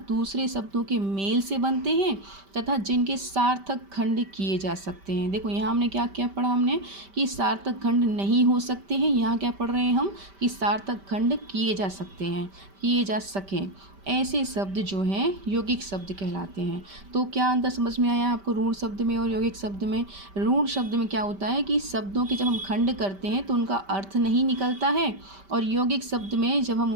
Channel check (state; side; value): late; left; 5.1 ms